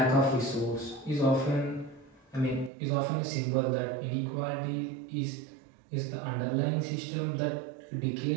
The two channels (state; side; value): drops out; left; at 2.7 s